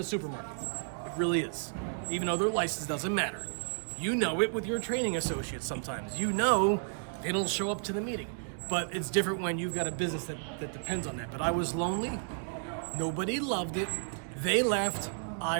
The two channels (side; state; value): left; silent; digital silence